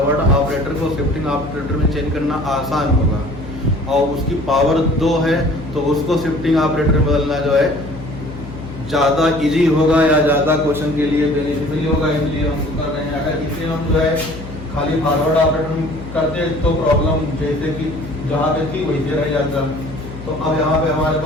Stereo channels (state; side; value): noise; left; hum, 13 dB below the sound